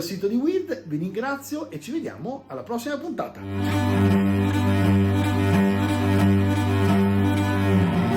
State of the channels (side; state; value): both; identical; correlation 1.00